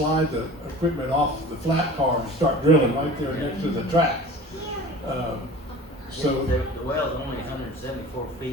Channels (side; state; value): both; normal; correlation 0.40